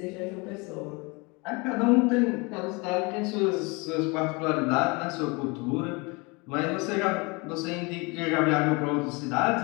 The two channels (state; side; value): quieter; right; 27.9 dB